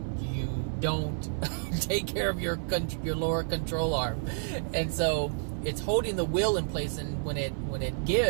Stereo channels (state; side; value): silent; left; 58 dB below the other